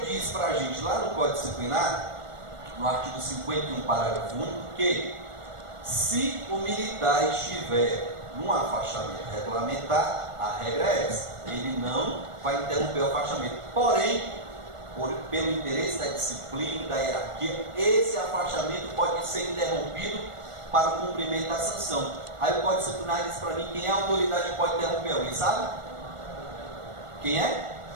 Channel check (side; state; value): left; late; 1.5 ms